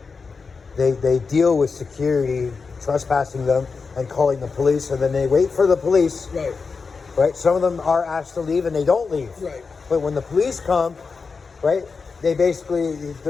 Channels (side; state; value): right; quieter; 4.8 dB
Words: They deal with security trespassing them and calling the police, and then they wait for the police. Right. Right. Some of them are asked to leave and they don't leave. Right. But when the police come, right, they basically